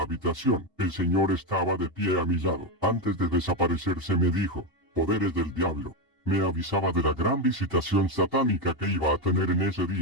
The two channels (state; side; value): normal; both; correlation 0.09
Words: habitación. El Señor estaba de pie a mi lado. Antes de desaparecerse me dijo: poderes del diablo. Me avisaba de la gran visitación satánica que iba a tener en ese